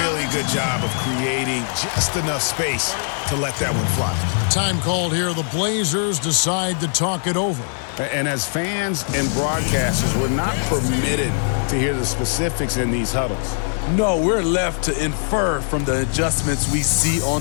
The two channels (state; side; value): silent; right; 65 dB below the other